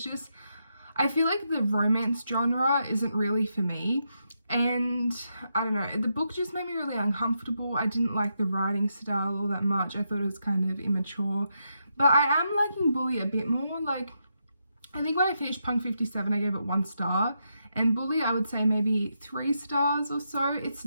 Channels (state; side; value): inverted; both; correlation -0.83